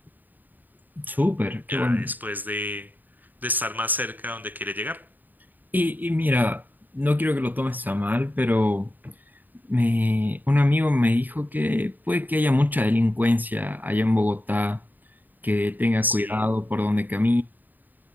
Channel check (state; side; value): late; left; 0.087 ms